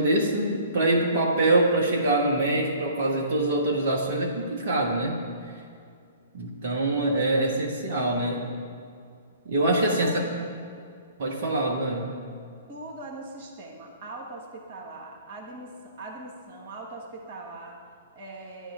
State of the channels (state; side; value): inverted; both; correlation -0.54